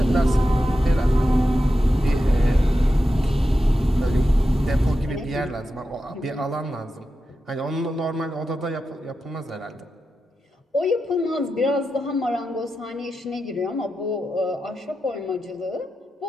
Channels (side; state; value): both; normal; correlation 0.90